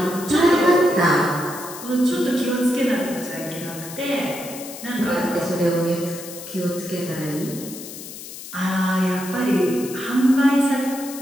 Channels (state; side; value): noise; left; hiss, 12 dB below the sound